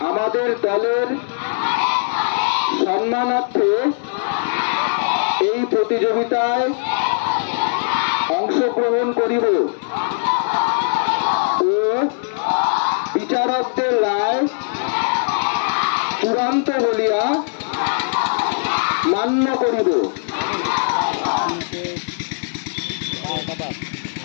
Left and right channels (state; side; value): silent; right; digital silence